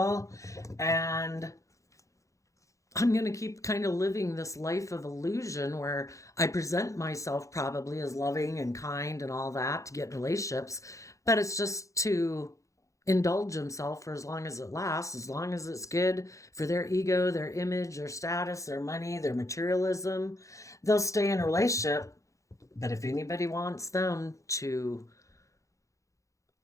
And I'm going to keep kind of living this life of illusion where I present myself probably as loving and kind and all that to get in relationships, but it's just to indulge himself for as long as it lasts, as long as it's good for their ego, their image, their status, their money, their materialism. They'll stay in a relationship, but if anybody wants them to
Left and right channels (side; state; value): right; late; 0.15 ms